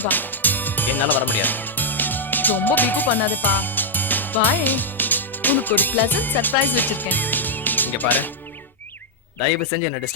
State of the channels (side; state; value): both; normal; correlation -0.04